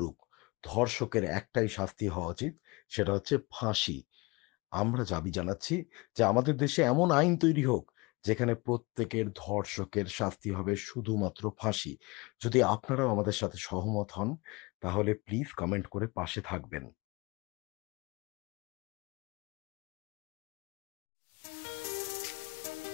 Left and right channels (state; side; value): quieter; right; 25.5 dB